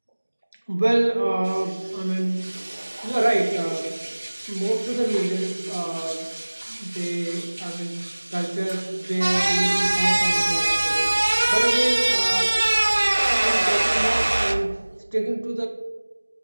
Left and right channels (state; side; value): inverted; both; correlation -1.00